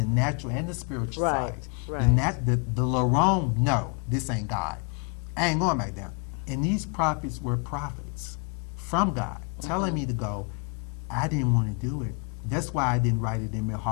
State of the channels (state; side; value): quieter; right; 35.3 dB